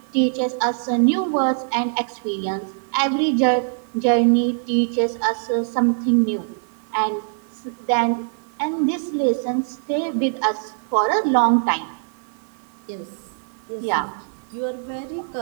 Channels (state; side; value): silent; left; 64 dB below the other